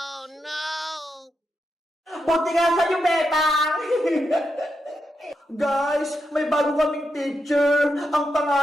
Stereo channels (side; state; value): both; normal; correlation 0.85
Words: no! Buti nga sa'yo, Bebang! Guys, may bago kaming teacher. Ang